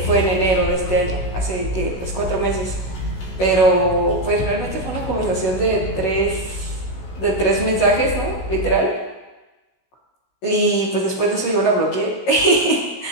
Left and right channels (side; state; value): right; late; 16 ms